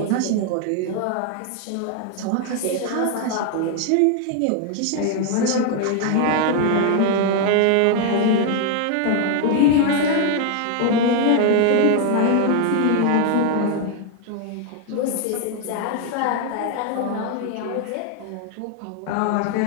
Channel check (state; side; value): different; both; correlation 0.01